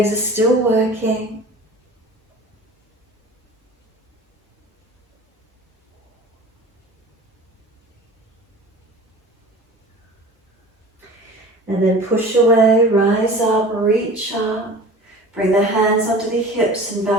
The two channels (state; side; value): normal; both; correlation 0.40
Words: are still working. And then push away, rise up, reach up. Bring the hands onto the hips and